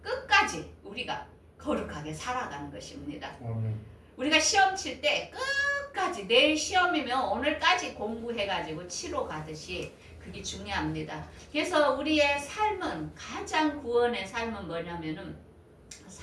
끝까지 우리가 거룩하게 살아가는 것입니다. 우리가 시험 칠 때 끝까지 내일 시험이면 오늘까지 공부해가지고 치러 가듯이 그게 중요합니다. 그래서 우리의 삶은 가장 구원의 삶은 뭐냐면은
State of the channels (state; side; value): identical; both; correlation 1.00